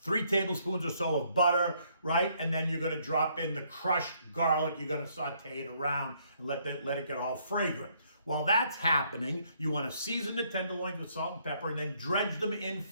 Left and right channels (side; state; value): both; inverted; correlation -0.68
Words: 3 tablespoons or so of butter, right? And then you're going to drop in the crushed garlic. You're going to saute it around and let it get all fragrant. While that's happening, you want to season the tenderloins with salt and pepper and then dredge them in